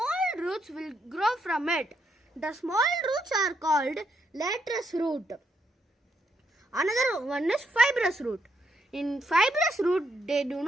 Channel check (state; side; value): normal; both; correlation 0.77